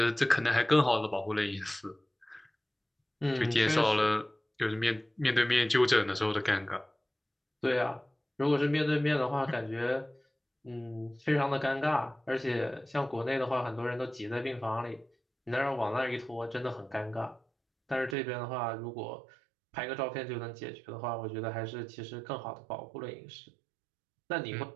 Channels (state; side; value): drops out; left; at 18.2 s